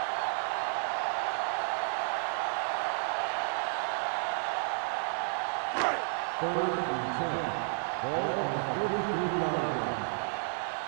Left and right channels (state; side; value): silent; left; 57 dB below the other